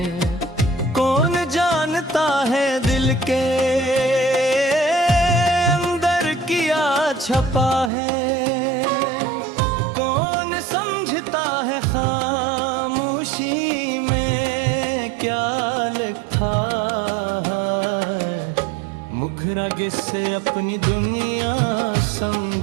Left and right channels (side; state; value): left; drops out; at 7.9 s